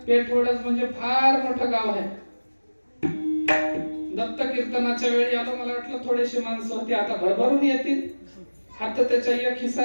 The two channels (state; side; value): inverted; both; correlation -1.00